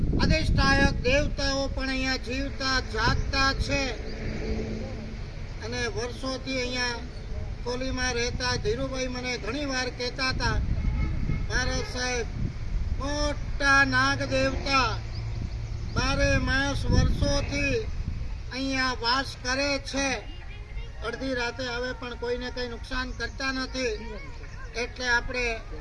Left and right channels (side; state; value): both; identical; correlation 1.00